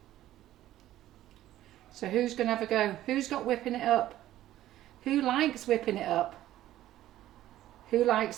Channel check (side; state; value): left; quieter; 13.7 dB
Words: So who's going to have a go? Who's got whipping it up? Who likes whipping it up? Who likes